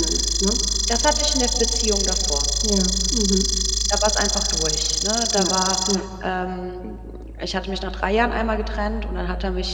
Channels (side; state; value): both; identical; correlation 1.00